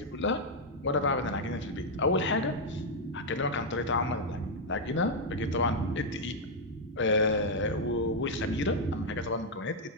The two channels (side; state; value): both; normal; correlation -0.01